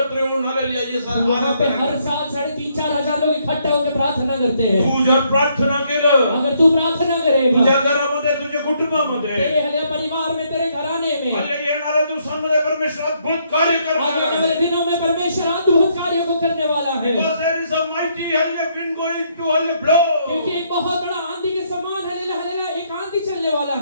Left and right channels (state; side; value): inverted; both; correlation -0.71